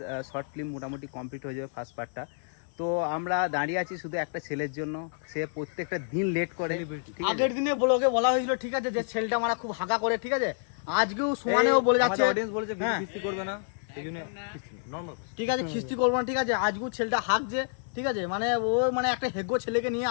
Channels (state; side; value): silent; right; 59 dB below the other